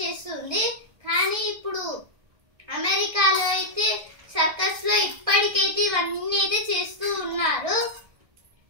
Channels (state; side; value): late; left; 1.6 ms